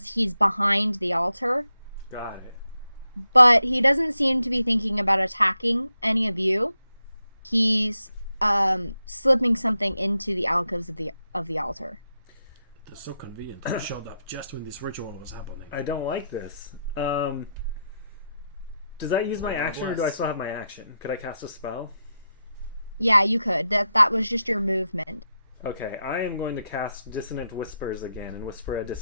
he's behind the altar. Got it. But he doesn't seem to be thinking about attacking any of you. He's slipping something into the alcoves of the altar. It's so convenient that I showed up just when this ritual was happening. I don't like this. Does that use my action, or do I still have my action? Could I cast a spell? Yeah, you could. That was just your movement. Okay, I am going to cast Dissonant Whispers again and whisper a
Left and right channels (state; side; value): inverted; both; correlation -0.86